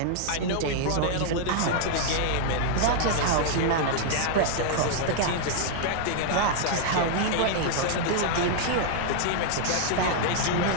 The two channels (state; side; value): different; both; correlation -0.01